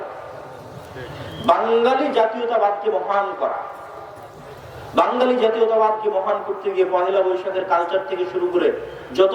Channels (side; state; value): both; identical; correlation 1.00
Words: বাঙালি জাতীয়তাবাদকে মহান করা, বাঙালি জাতীয়তাবাদকে মহান করতে গিয়ে পহেলা বৈশাখের কালচার থেকে শুরু করে যত